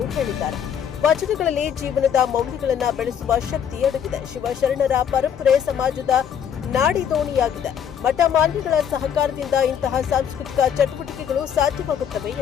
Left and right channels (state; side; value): quieter; right; 8.4 dB